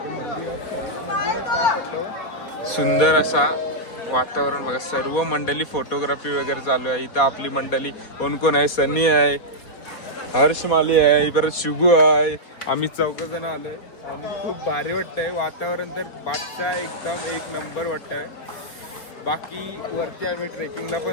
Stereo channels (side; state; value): right; late; 4.2 ms